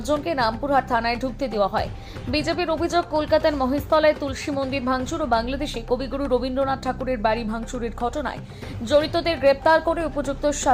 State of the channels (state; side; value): identical; both; correlation 1.00